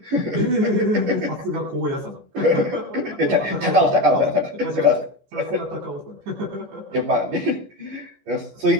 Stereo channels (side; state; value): left; late; 14 ms